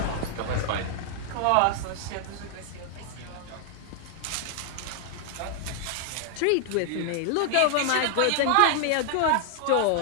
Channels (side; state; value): both; different; correlation 0.00